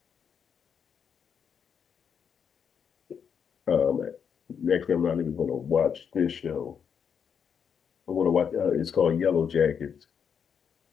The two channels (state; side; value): quieter; right; 7.2 dB